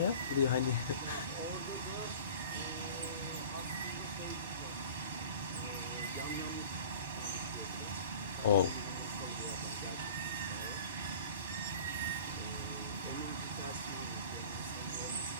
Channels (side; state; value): both; inverted; correlation -0.42